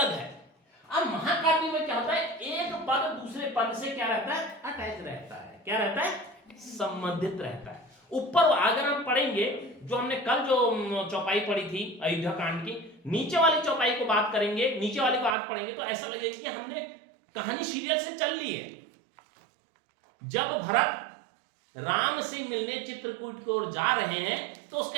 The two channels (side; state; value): left; drops out; at 15.4 s